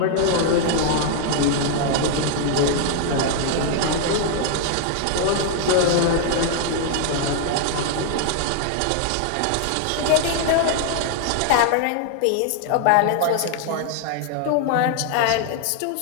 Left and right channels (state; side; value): different; both; correlation 0.00